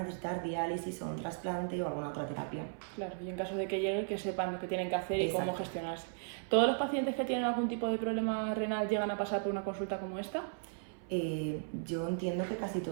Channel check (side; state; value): left; silent; 54 dB below the other